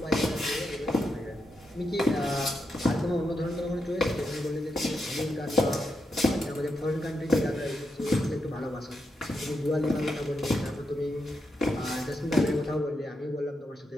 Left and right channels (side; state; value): both; normal; correlation 0.84